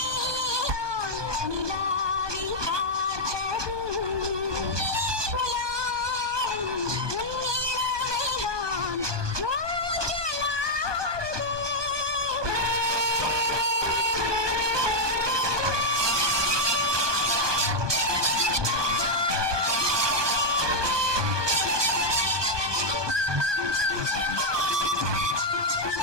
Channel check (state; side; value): late; left; 1.2 ms